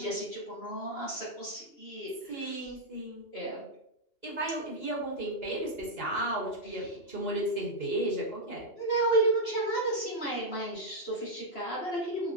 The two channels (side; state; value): right; late; 2.8 ms